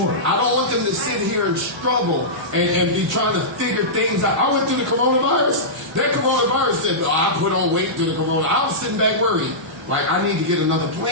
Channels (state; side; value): normal; both; correlation -0.15